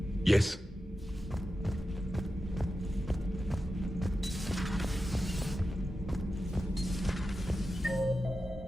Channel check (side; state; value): both; normal; correlation 0.91